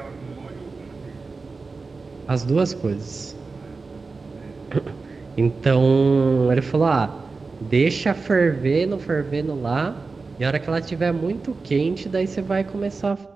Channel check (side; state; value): left; quieter; 4.1 dB